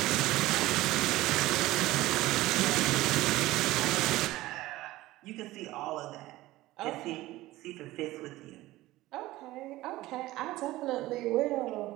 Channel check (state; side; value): quieter; left; 17.5 dB